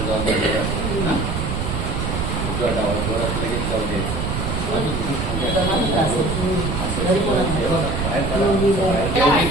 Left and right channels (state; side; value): noise; right; rumble, 2 dB below the sound